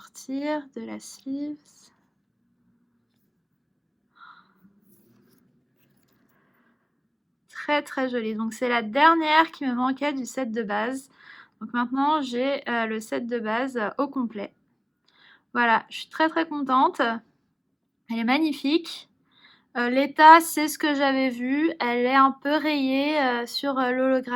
de la sleeves. Très jolie. Donc c'est la dernière qui me manquait du set de base. Donc maintenant j'ai le set de base au complet. Voilà, je suis très contente. Elle est magnifique. L'état, c'est ce que j'avais vu. Elle est un peu rayée sur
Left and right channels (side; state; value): both; identical; correlation 1.00